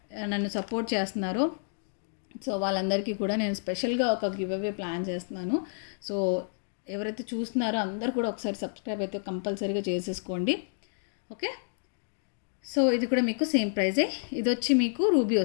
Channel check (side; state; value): right; silent; digital silence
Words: నన్ను సపోర్ట్ చేస్తున్నారో, సో వాళ్ళందరికీ కూడా నేను స్పెషల్గా ఒక గివ్ అవే ప్లాన్ చేస్తున్నాను. సో ఎవరైతే చూస్తున్నారో అందరూ కూడా ఒకసారి సబ్స్క్రైబ్ అయితే కంపల్సరీగా చేసేసుకోండి. ఓకే, సో ఇది కూడా మీకు సేమ్ ప్రైజే. ఇది వచ్చి మీకు రూబీ